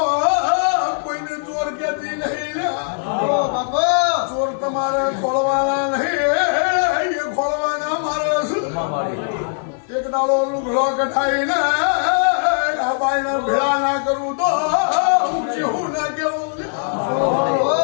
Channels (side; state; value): right; silent; digital silence